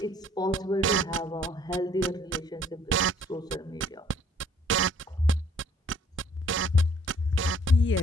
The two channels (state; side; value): normal; both; correlation 0.60